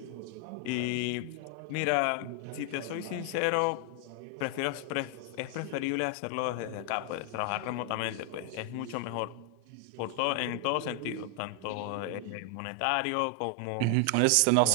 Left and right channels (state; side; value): different; both; correlation 0.00